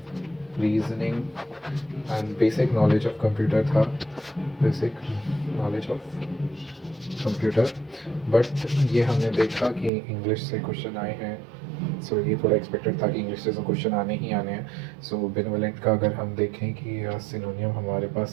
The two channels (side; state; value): left; drops out; at 9.9 s